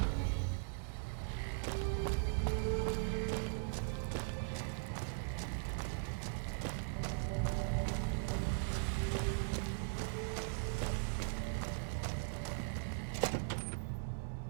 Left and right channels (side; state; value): left; silent; digital silence